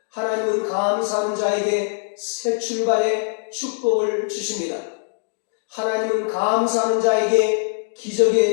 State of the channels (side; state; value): right; silent; 64 dB below the other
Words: 하나님은 감사하는 자에게 새 출발의 축복을 주십니다. 하나님은 감사하는 자에게